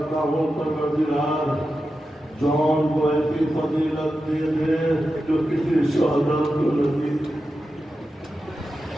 ہوں پروردگار جون کو ایسی فضیلت دے دے جو کسی شہدا کو نہیں۔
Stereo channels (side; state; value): both; normal; correlation 0.91